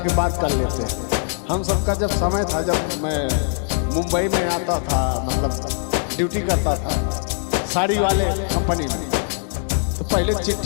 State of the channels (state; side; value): silent; right; 65 dB below the other